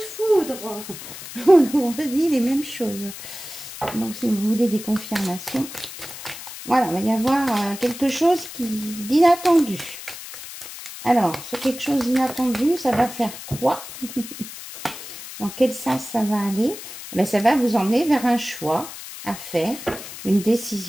foudre. On nous redit les mêmes choses. Donc, si vous voulez des confirmations... Voilà, il va y avoir quelque chose d'inattendu. Alors, ce quelque chose d'inattendu, ça va faire quoi? Dans quel sens ça va aller? Eh bien, ça va vous emmener vers un choix à faire, une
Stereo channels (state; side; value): noise; left; hiss, 12 dB below the sound